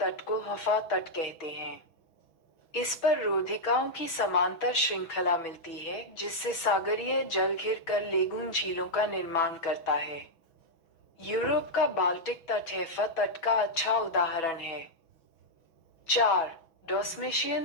को हफा तट कहते हैं। इस पर रोधिकाओं की समांतर श्रृंखला मिलती है जिससे सागरीय जल घिर कर लेगून झीलों का निर्माण करता है। यूरोप का बाल्टिक तट हैफा तट का अच्छा उदाहरण है। 4.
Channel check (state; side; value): late; right; 6.1 ms